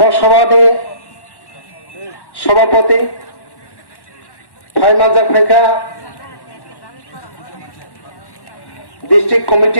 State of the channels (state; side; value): late; right; 1.1 ms